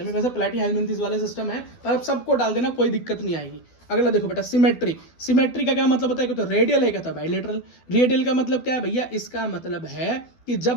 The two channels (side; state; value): right; late; 12 ms